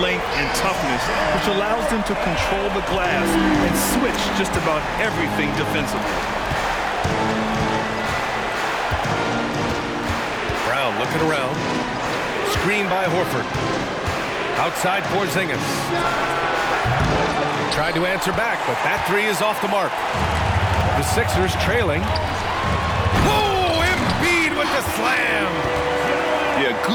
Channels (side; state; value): both; identical; correlation 1.00